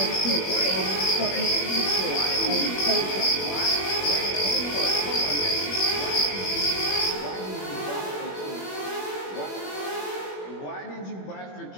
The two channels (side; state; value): right; late; 21 ms